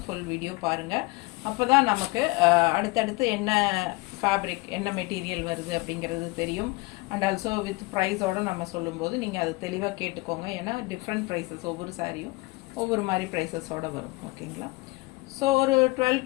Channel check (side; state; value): right; quieter; 23.7 dB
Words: ஃபுல் வீடியோ பாருங்கள். அப்போ தான் நமக்கு அடுத்தடுத்து என்ன ஃபேப்ரிக் என்ன மெட்டீரியல் வருது அப்படிங்கிறது தெரியும். அண்ட் ஆல்சோ வித் ப்ரைஸோடு நம்ம சொல்லும்போது நீங்கள் அது தெளிவாக கேட்டுக்கோங்க. ஏன்னா டிஃப்ரெண்ட் ப்ரைஸஸ் ஒவ்வொரு சாரியும் ஒவ்வொரு மாதிரி ப்ரைஸஸோடு வரும். ஓகேங்களா? ஸோ ஒரு 12